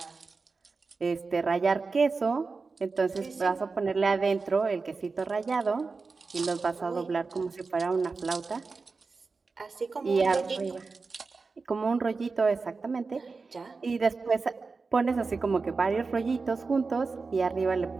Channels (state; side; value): quieter; left; 4.3 dB